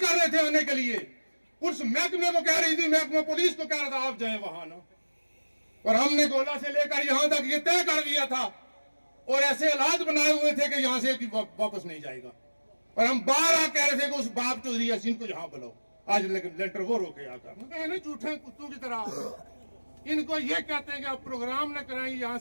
रहे थे आने के लिए। पुलिस महकमे को कह रही थी, महकमा पुलिस को कह रहा था आप जाए वहां ना। और हमने गोला से लेकर यहां तक ये तय कर दिया था और ऐसे हालात बनाए हुए थे कि यहां से वापस नहीं जाएगा। और हम बार बार कह रहे थे कि उस बाप चौधरी यासीन को यहां बुलाओ। आज लेटर वो रोके आकर झूठे कुत्तों की तरह। इनको ये कहते हैं कि आप प्रोग्राम न कराएंगे, यहां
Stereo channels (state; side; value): inverted; both; correlation -1.00